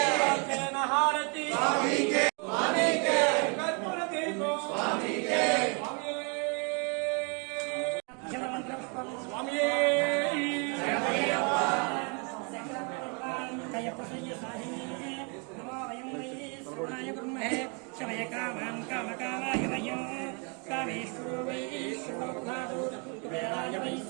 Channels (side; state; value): left; quieter; 35.3 dB